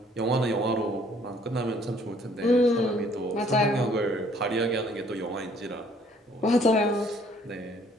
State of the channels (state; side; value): normal; both; correlation 0.61